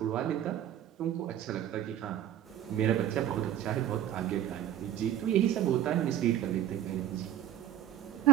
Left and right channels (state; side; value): quieter; left; 11.2 dB